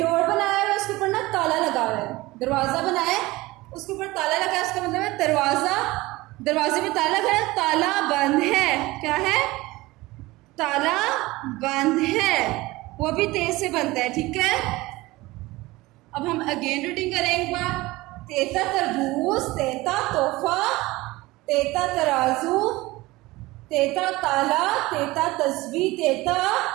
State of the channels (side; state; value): left; quieter; 20.2 dB